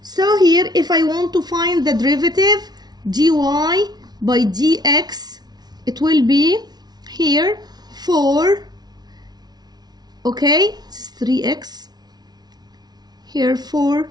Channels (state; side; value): late; left; 0.19 ms